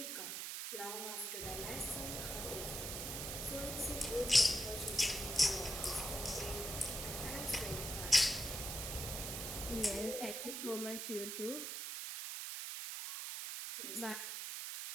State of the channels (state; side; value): noise; right; hiss, 4 dB below the sound